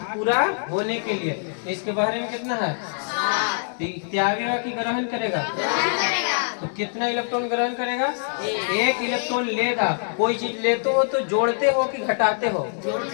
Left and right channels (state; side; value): silent; right; 63 dB below the other